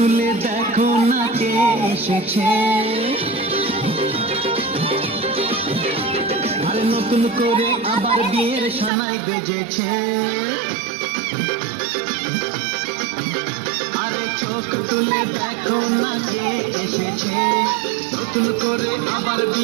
দেখো না কে এসেছে, আরে নতুন করে আবার বিয়ের সানাই বেজেছে। আরে চোখ তুলে দেখো না কে এসেছে, নতুন করে আবার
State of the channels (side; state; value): left; drops out; at 8.9 s